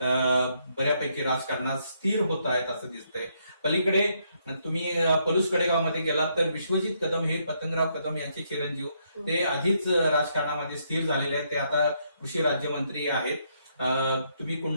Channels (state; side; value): inverted; both; correlation -0.74